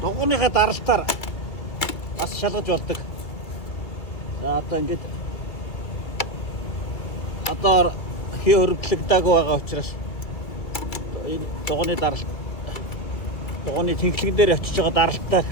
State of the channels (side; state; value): right; late; 2.2 ms